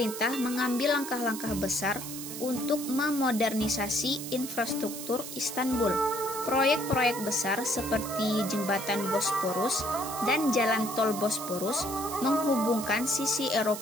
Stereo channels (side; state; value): right; noise; hiss, 9 dB below the sound